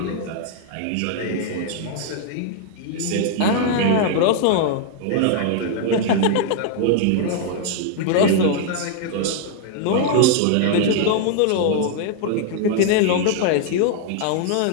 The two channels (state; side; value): different; both; correlation 0.00